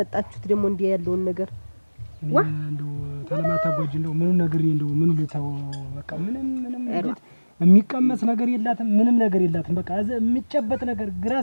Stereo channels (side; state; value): both; inverted; correlation -1.00